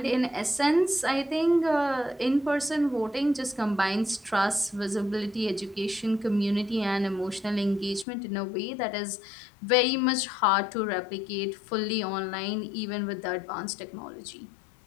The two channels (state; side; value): drops out; right; at 8.1 s